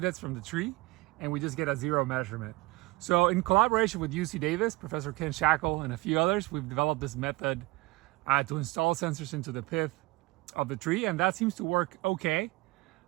from the tree, and we just get a zero measurement. So in collaboration with UC Davis, Professor Ken Shackle, and a few others, we've developed this method to install sensors into the pith of the tree, and that seems to work okay.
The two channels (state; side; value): quieter; left; 21.8 dB